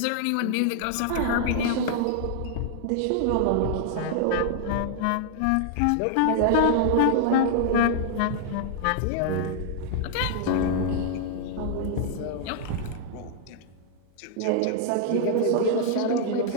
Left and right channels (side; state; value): both; different; correlation -0.01